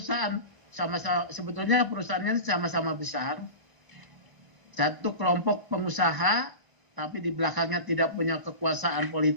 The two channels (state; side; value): late; left; 1.0 ms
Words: sama-sama, sebetulnya perusahaannya sama-sama besar, satu kelompok pengusaha tapi di belakangnya tidak punya kekuasaan